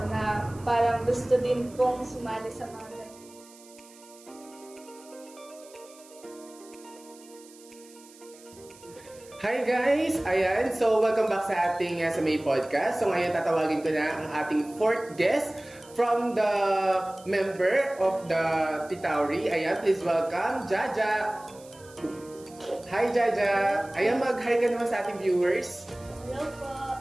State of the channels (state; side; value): noise; right; hiss, 23 dB below the sound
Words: na parang gusto din pong sumali sa mga ganito. Hi guys! Ayan, so welcome back sa ating sa May Podcast. So ngayon tatawagin ko na ang ating fourth guest from the member of the Titauri. Ayan, please welcome Jaja! Hi Jaja! Ayan, mag-hi ka naman sa ating viewers. Hello po!